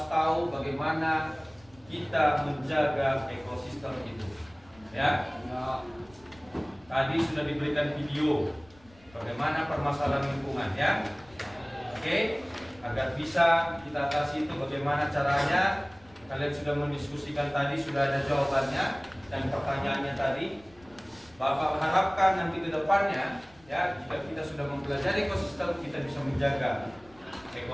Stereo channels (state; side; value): noise; left; rumble, 27 dB below the sound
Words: tahu bagaimana kita menjaga ekosistem itu, ya. Tadi sudah diberikan video bagaimana permasalahan lingkungan, ya. Oke, agar bisa kita atasi itu bagaimana caranya. Kalian sudah mendiskusikan tadi, sudah ada jawabannya dan pertanyaannya tadi. Bapak harapkan nanti ke depannya, ya, jika kita sudah mempelajari ekosistem, kita bisa menjaga